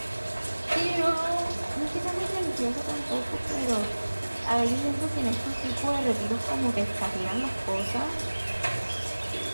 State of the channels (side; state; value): both; inverted; correlation -1.00